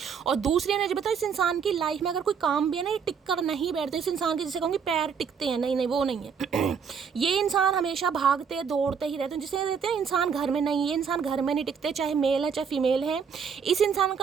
और दूसरी एनर्जी बताओ, इस इंसान की लाइफ में अगर कोई काम भी है ना, ये टिक कर नहीं बैठते, इस इंसान के जैसे कहूँगी पैर टिकते हैं, नहीं वो नहीं है। ये इंसान हमेशा भागते दौड़ते ही रहते हैं, जिसे कहते हैं इंसान घर में नहीं, ये इंसान घर में नहीं टिकते, चाहे मेल है चाहे फीमेल है। इस इंसान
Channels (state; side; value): quieter; left; 6.6 dB